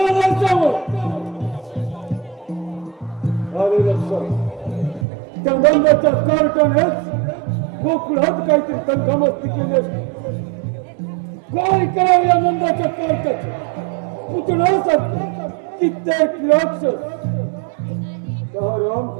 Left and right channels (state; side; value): drops out; left; at 5.1 s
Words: अरे लक्षात त्या बंदाच्या कार्टनेच कोकणात काहीतरी तंगमस्ती केली असते काय करावं या नंदाच्या कार्टाचे पुतण्यासाठी कित्येक राक्षस